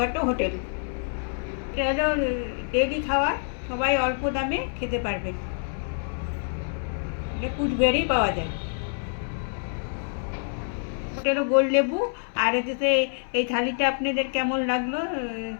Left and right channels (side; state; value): right; silent; 60 dB below the other